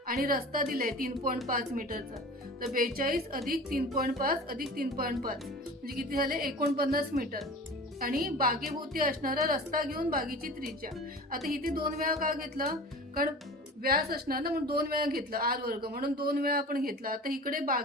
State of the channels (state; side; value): normal; both; correlation 0.38